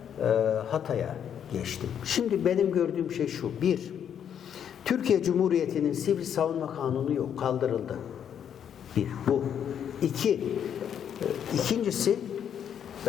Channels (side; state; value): right; quieter; 8.8 dB